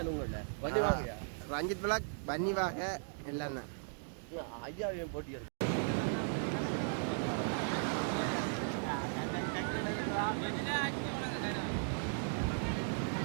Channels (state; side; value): silent; left; digital silence